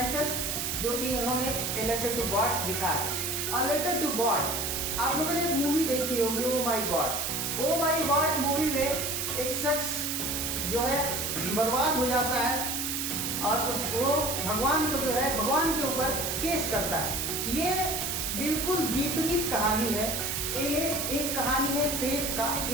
जो कि इन्होंने ए लेटर टू गॉड लिखा है। अ लेटर टू गॉड, आप लोगों ने एक मूवी देखी होगी, oh my God. Oh my God movie में एक शख्स जो है बर्बाद हो जाता है और वो भगवान को जो है भगवान के ऊपर केस करता है। ये बिल्कुल विपरीत कहानी है। ये एक कहानी है फेथ का,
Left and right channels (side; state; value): right; noise; hiss, 1 dB below the sound